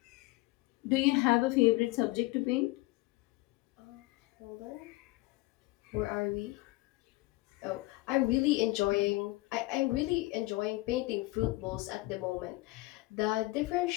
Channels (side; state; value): right; quieter; 21.3 dB